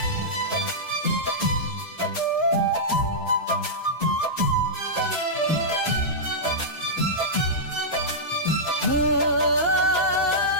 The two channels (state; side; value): normal; both; correlation -0.12